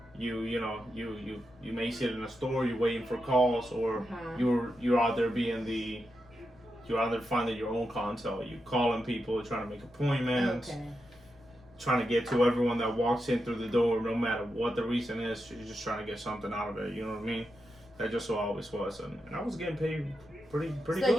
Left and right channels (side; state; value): left; noise; rumble, 28 dB below the sound